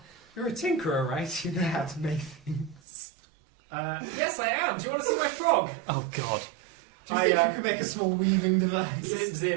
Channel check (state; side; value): drops out; left; at 2.8 s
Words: You're a tinkerer, right? You know how to make things. Yes, I am. Do you want to see my frog? Oh, God. Do you think you could make a small weaving device?